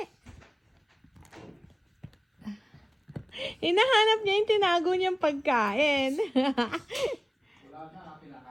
it. Hinahanap niya yung tinago niyang pagkain.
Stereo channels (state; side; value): identical; both; correlation 1.00